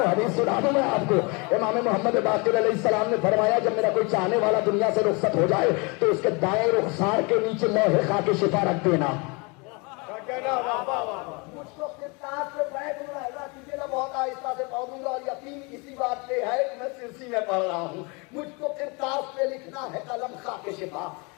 دوں میں آپ کو. امام محمد باقر علیہ السلام نے فرمایا جب میرا کوئی چاہنے والا دنیا سے رخصت ہو جائے تو اس کے دائیں رخسار کے نیچے لوح خاک شفا رکھ دینا. مجھ کو کرتاس پہ بیٹھ رہا ہے کیجیے نا, بہت آہستہ سے پڑھوں گا اور یقین اسی بات پہ ہے کہ میں سرسی میں پڑھ رہا ہوں. مجھ کو کرتاس پہ لکھنا ہے قلم خاک شفا.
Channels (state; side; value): quieter; right; 29.7 dB